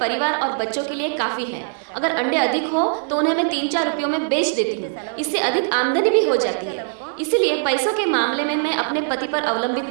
और बच्चों के लिए काफी है। अगर अंडे अधिक हो तो उन्हें मैं 3-4 रुपयों में बेच देती हूँ। इससे अधिक आमदनी भी हो जाती है। इसीलिए पैसों के मामले में मैं अपने पति पर अवलंबित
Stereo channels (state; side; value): silent; left; digital silence